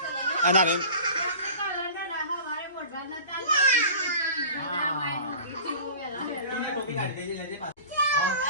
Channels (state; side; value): inverted; both; correlation -0.41